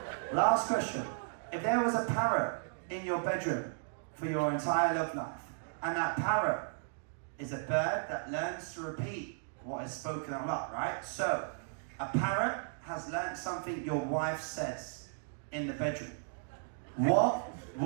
last question. If there was a parrot in your bedroom for your entire love life, and that parrot is a bird that learns to repeat what is spoken out loud, right? So, a parrot has learned something your wife says in the bedroom. What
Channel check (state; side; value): silent; left; digital silence